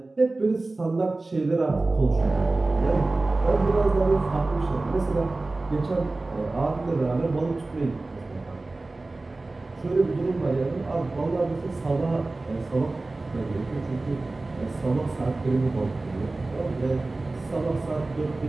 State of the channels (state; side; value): quieter; left; 3.2 dB